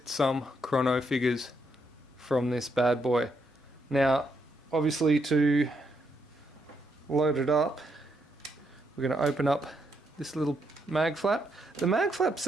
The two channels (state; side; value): normal; both; correlation 0.77